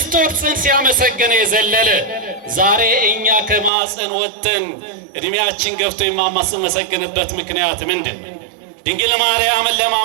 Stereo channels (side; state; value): left; drops out; at 3.7 s